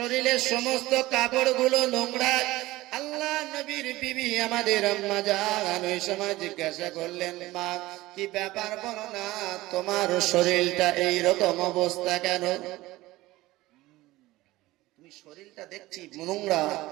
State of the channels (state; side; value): quieter; left; 18.2 dB